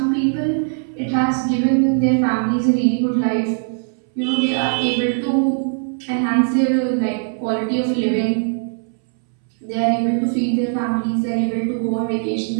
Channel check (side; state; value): left; silent; 66 dB below the other